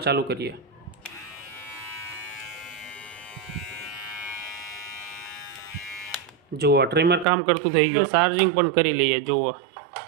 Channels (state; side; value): drops out; left; at 7.2 s